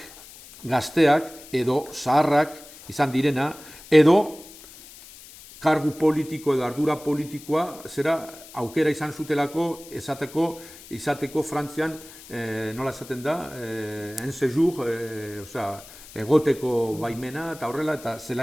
gazteak edo zaharrak izan direna, edo kargu politiko edo ardura politikoa aukera izan zutelako izateko Frantzian, nola esaten da, en séjour, egoteko baimena eta horrela, eta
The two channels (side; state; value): left; noise; hiss, 19 dB below the sound